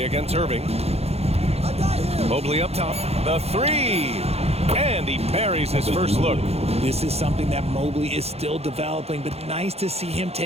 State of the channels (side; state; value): left; late; 0.30 ms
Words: against Irving. Mobley up top. The 3. And he buries his first look. This is something that Mobley is still developing, but nice to see him